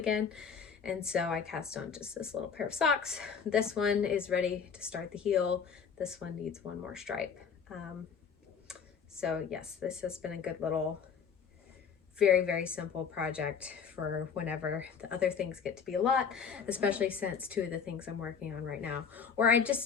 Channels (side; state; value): right; quieter; 6.6 dB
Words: And so I cast on just this little pair of socks. This one is ready to start the heel. This one needs one more stripe. So yes, this has been a good little, very, very simple project for whenever the other things get to be a lot, especially since two of the things I'm working on right now, or I